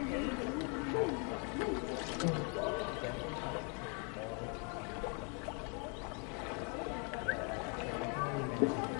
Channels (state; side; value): quieter; right; 37.4 dB